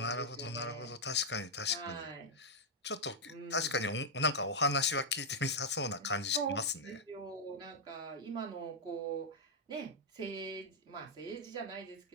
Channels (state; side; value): normal; both; correlation -0.04